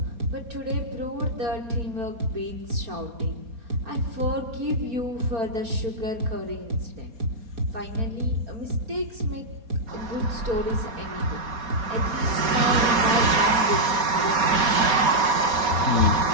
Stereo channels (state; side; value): late; left; 4.2 ms